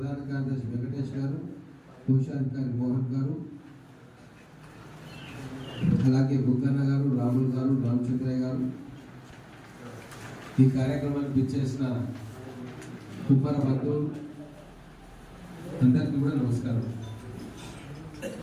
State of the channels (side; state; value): both; identical; correlation 1.00